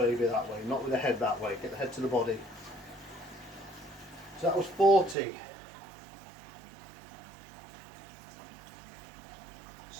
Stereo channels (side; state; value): left; drops out; at 5.2 s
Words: that way, not with the head that way. Get the head to the body. So that was 40.